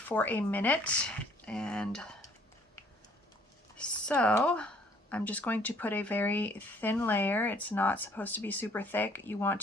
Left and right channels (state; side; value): normal; both; correlation 0.60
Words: a minute, and so I'm just going to put a very thin layer. It's not supposed to be super thick. You want